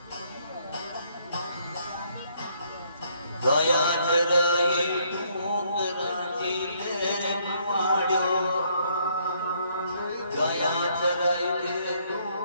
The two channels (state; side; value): inverted; both; correlation -0.68